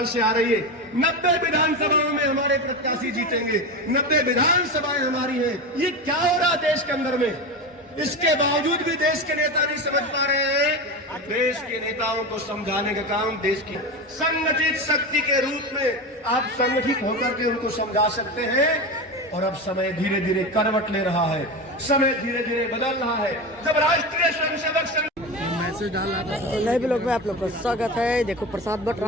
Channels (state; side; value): normal; both; correlation 0.22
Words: आ रही है। 90 विधानसभाओं में हमारे प्रत्याशी जीतेंगे, 90 विधानसभाएं हमारी हैं। ये क्या हो रहा देश के अंदर में? इसके बावजूद भी देश के नेता नहीं समझ पा रहे हैं। देश के नेताओं को समझाने का काम देश की संगठित शक्ति के रूप में आप संगठित होकर के उनको समझा सकते हैं। और अब समय धीरे धीरे करवट ले रहा है, समय धीरे धीरे बदल रहा है। जब राष्ट्रीय स्वयंसेवक संघ मैसेज डाला था नए ब्लॉग में आप लोग का स्वागत है। देखो प्रसाद बट